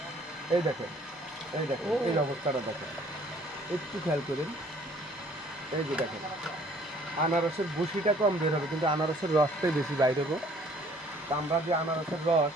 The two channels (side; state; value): both; normal; correlation 0.57